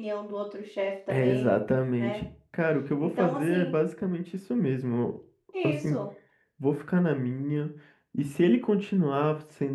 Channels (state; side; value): identical; both; correlation 1.00